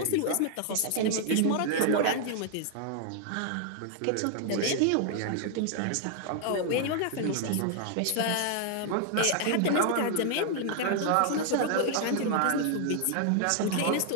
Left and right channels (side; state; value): both; different; correlation 0.00